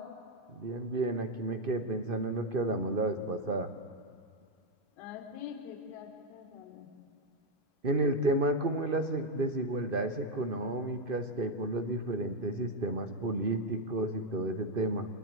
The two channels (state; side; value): late; left; 2.5 ms